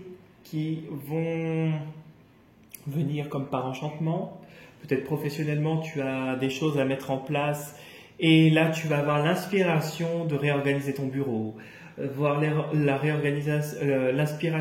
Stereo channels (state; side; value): identical; both; correlation 1.00